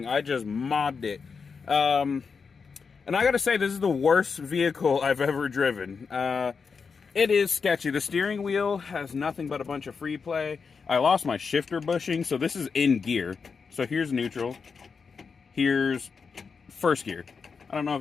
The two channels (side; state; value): right; quieter; 5.4 dB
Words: I just mobbed it. And I gotta say, this is the worst vehicle I've ever driven. It is sketchy. The steering wheel has nothing but a bunch of free play. I lost my shifter bushing, so this is in gear. So here's neutral. Here's first gear. I don't know